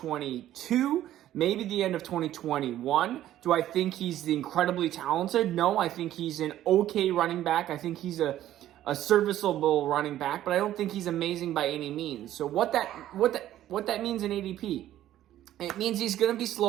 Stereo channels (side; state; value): left; quieter; 12.9 dB